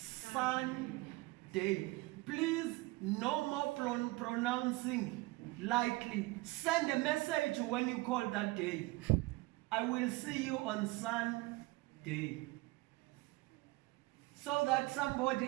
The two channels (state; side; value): quieter; left; 21.5 dB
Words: Please, no more pronouncing lightly. Send a message when you call that day. I will see you on Sunday. So that somebody